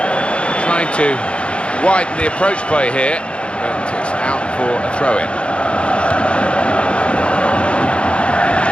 To widen the approach play here, but it's out for a throw-in.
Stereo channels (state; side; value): late; right; 0.058 ms